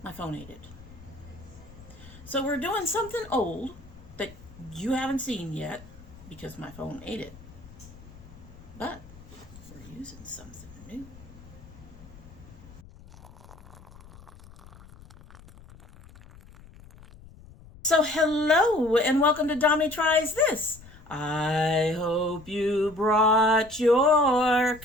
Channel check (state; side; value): noise; left; rumble, 20 dB below the sound